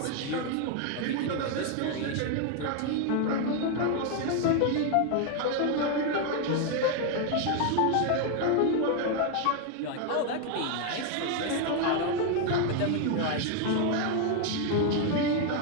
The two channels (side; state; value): both; different; correlation 0.01